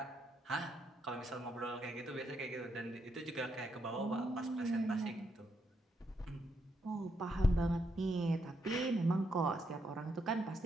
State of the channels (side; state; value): both; normal; correlation 0.79